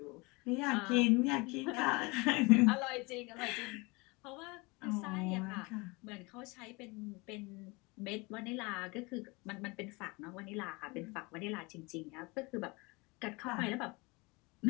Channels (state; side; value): quieter; right; 26.2 dB